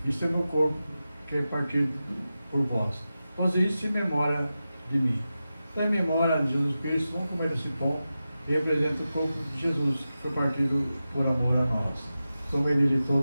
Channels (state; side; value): inverted; both; correlation -0.93